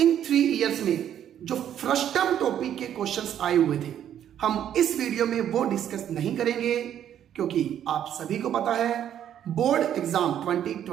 3 इयर्स में जो फ्रस्टम टॉपिक के क्वेश्चंस आए हुए थे, हम इस वीडियो में वो डिस्कस नहीं करेंगे, क्योंकि आप सभी को पता है बोर्ड एग्जाम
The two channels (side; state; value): left; quieter; 10.2 dB